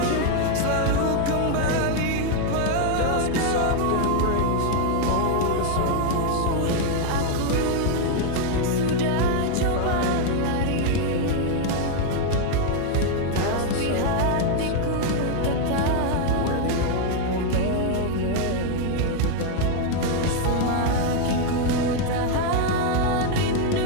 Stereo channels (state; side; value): different; both; correlation 0.01